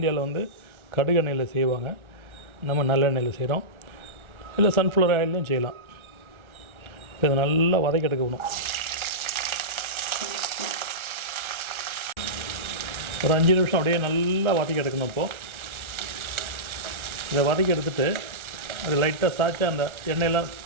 கடுகு எண்ணெயில் செய்வாங்க. நம்ம நல்லெண்ணெயில் செய்கிறோம். இல்லை சன்ஃப்ளவர் ஆயிலையும் செய்யலாம். இப்போ இதை நல்லா வதக்கி எடுக்கணும். ஒரு 5 நிமிஷம் அப்படியே நல்லா வதக்கி எடுக்கணும். இப்போது இதை வதக்கி எடுத்துகிட்டு அது லைட்டாக சாய்ச்சா அந்த எண்ணெயெல்லாம்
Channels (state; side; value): late; left; 1.3 ms